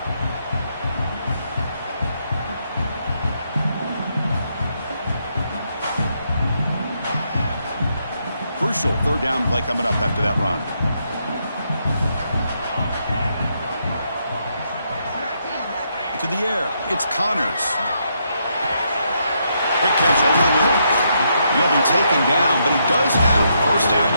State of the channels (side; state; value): both; inverted; correlation -0.77